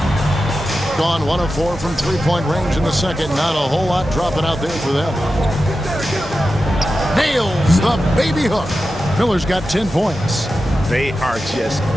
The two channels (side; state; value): both; normal; correlation 0.92